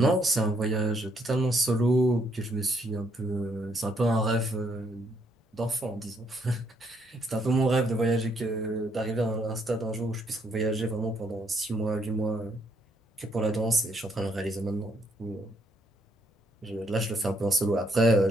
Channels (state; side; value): normal; both; correlation 0.71